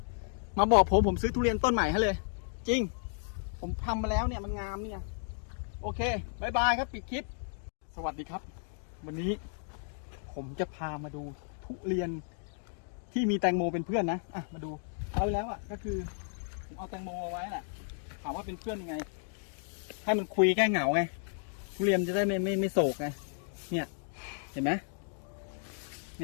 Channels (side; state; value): right; silent; 56 dB below the other